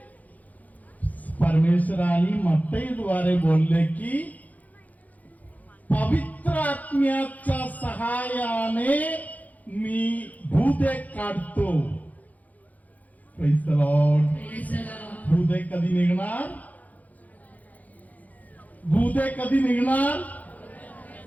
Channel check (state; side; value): late; right; 0.078 ms